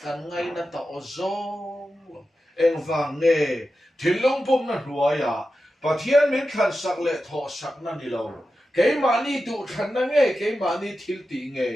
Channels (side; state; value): both; normal; correlation 0.91